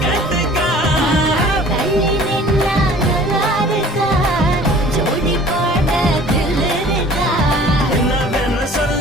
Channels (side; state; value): both; normal; correlation 0.49